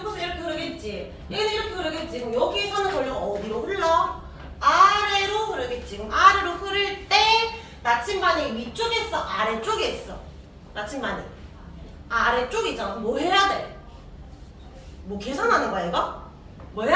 이렇게 흐르겠지. 얘는 이렇게 흐르겠지. 그럼 여기서는 전류가 어디로 흘러? 아래로 흐르겠지. 그럼 아래로 흐를 때 나침반이 위쪽에 있어? 아래쪽에 있어? 나침반이 아래쪽이잖아. 그럼 뭐 해야 돼? 뭐 계산하는 거야 이거? 뭐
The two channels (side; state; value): both; identical; correlation 1.00